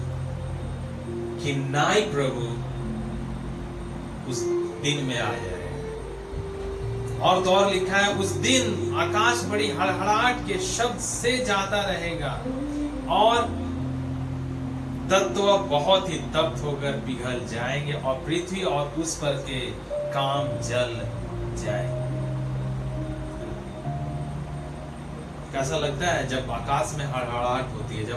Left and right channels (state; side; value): identical; both; correlation 1.00